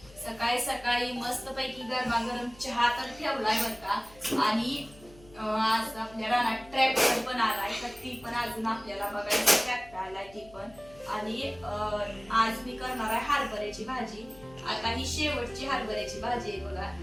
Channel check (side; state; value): left; noise; hum, 24 dB below the sound